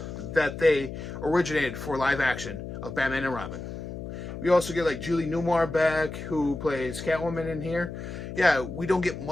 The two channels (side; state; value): left; noise; hum, 8 dB below the sound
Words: that they originated for live action of Batman and Robin. We also get like Julie Newmar back, who plays Catwoman in here. Yeah, we don't get